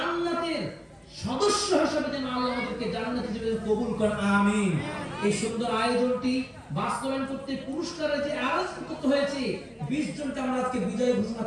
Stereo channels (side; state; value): both; identical; correlation 1.00